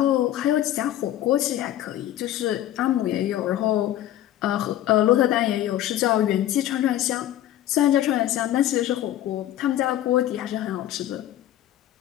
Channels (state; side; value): quieter; right; 12.8 dB